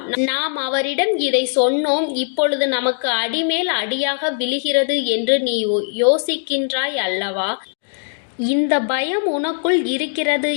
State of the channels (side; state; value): right; silent; digital silence